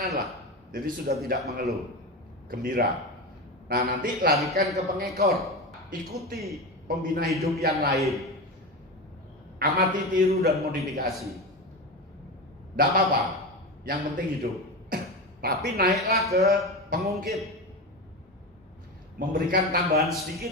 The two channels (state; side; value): normal; both; correlation 0.21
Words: lah. Jadi sudah tidak mengeluh, gembira. Nah, nanti larikan ke pengekor. Ikuti pembina hidup yang lain. Amati, tiru, dan modifikasi. Tidak apa-apa, yang penting hidup. Tapi naiklah ke pengungkit. Memberikan tambahan